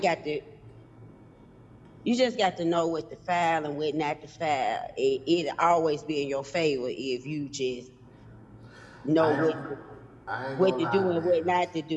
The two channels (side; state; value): both; identical; correlation 1.00